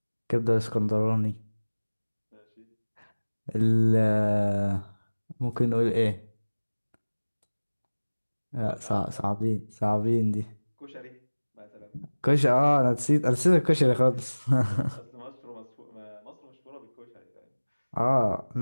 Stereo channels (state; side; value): inverted; both; correlation -1.00